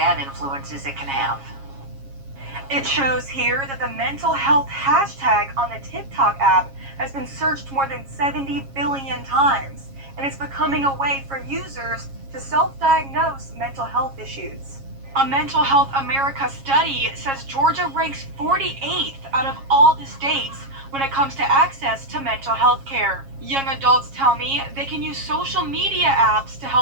influences it can have. It shows here that the mental health hashtag on the TikTok app has been searched more than 70 billion times, and it's becoming a way for users to self-diagnose mental health issues. A Mental Health America study says Georgia ranks 48th out of all the states when it comes to access to mental health care. Young adults tell me they can use social media apps to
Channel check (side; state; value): left; late; 7.3 ms